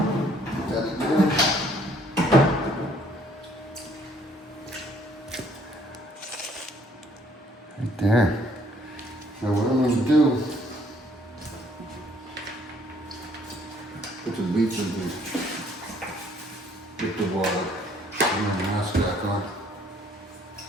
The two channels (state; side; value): normal; both; correlation 0.63